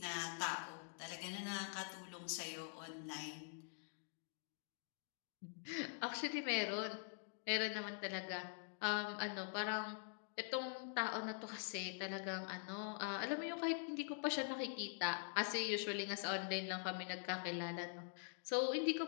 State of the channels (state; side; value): silent; right; digital silence